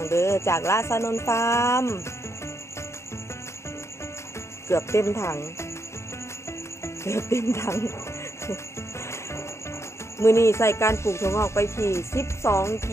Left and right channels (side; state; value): right; late; 0.13 ms